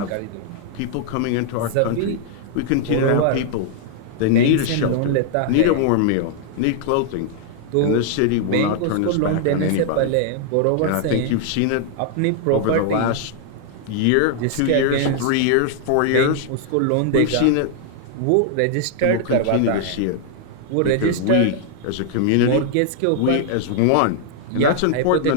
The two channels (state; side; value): different; both; correlation 0.00